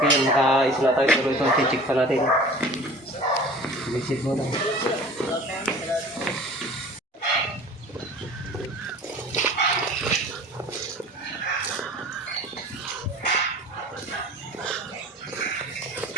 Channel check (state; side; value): normal; both; correlation 0.43